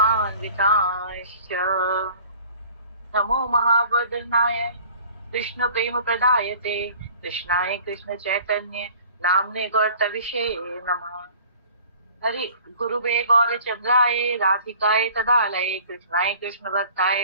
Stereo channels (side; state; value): both; inverted; correlation -0.49